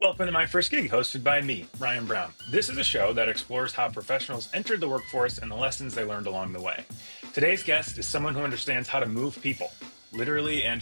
Welcome to My First Gig, hosted by me, Ryan Brown. This is a show that explores how professionals entered the workforce and the lessons they learned along the way. Today's guest is someone who understands how to move people, literally and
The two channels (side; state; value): both; inverted; correlation -1.00